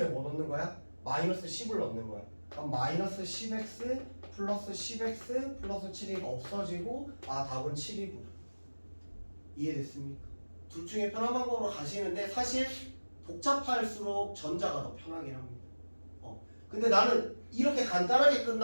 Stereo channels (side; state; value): both; inverted; correlation -1.00